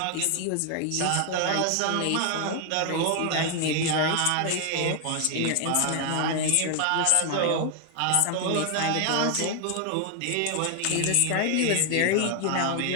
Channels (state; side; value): different; both; correlation 0.00